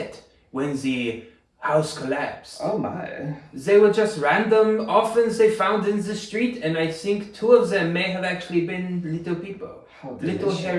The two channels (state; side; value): identical; both; correlation 1.00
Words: when the house collapsed. Oh my. They were just random orphans they found in the street, and I think 2 of them may have actually been little people. Little